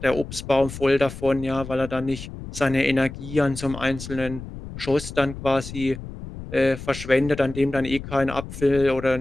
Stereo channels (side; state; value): left; noise; rumble, 11 dB below the sound